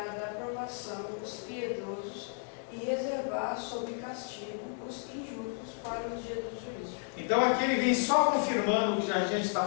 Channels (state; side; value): silent; right; 56 dB below the other